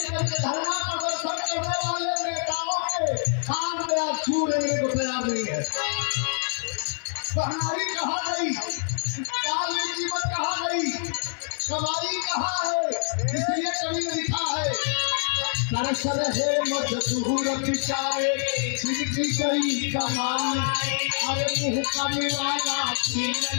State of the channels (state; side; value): silent; right; 58 dB below the other